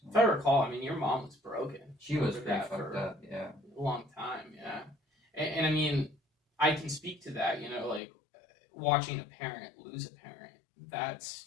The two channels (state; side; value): drops out; right; at 8.0 s